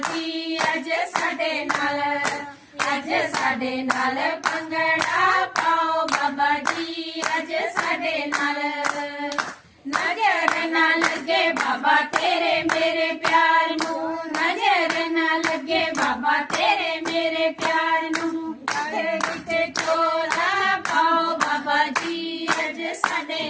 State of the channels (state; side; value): identical; both; correlation 1.00